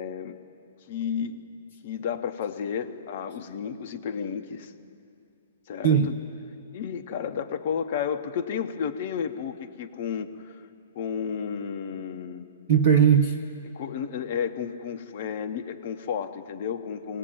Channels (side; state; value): both; inverted; correlation -0.30